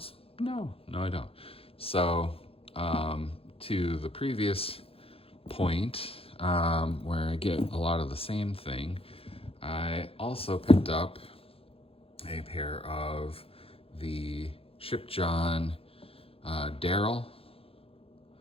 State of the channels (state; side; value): late; right; 0.27 ms